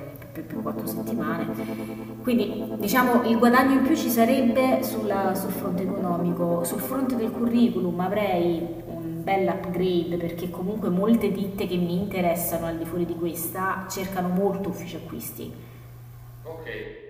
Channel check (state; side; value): identical; both; correlation 1.00